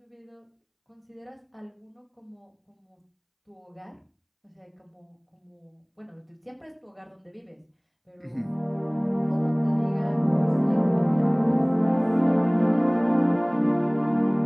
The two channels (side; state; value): both; identical; correlation 1.00